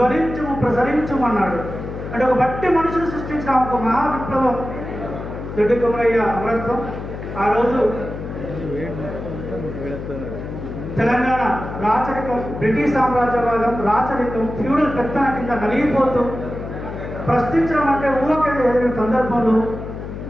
ప్రసరించుమన్నాడు. అంటే ఒక బట్టి మనుషులు సృష్టించిన ఒక మహా విప్లవం దొడ్డికుమరయ్య అమరత్వం. ఆ రోజు తెలంగాణ రాచరికం, బ్రిటిష్ సామ్రాజ్యవాదం, రాచరికం, ఫ్యూడల్ పెత్తన కింద నలిగిపోతూ ప్రశ్నించడం అంటే ఊహకేది ఎదిగిన సందర్భంలో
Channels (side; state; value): left; noise; hum, 8 dB below the sound